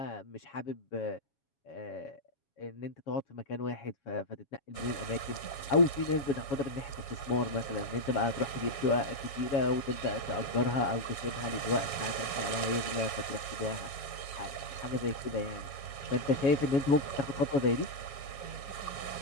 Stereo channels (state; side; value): late; right; 7.2 ms